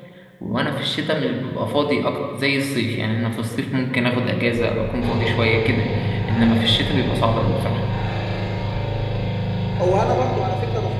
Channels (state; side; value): identical; both; correlation 1.00